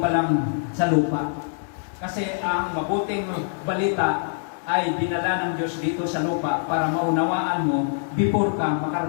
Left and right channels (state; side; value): silent; right; digital silence